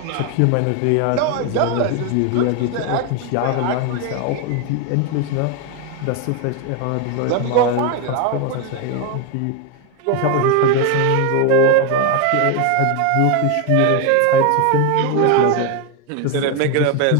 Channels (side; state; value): both; different; correlation 0.01